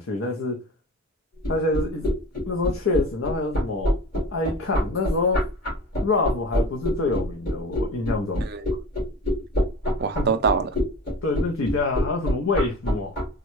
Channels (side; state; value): both; normal; correlation 0.37